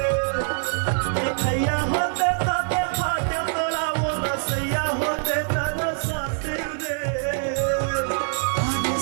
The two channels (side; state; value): left; silent; 63 dB below the other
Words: देखैया होते तारे भाग्य तोरा वो रसैया होते तारा साथे रे अरे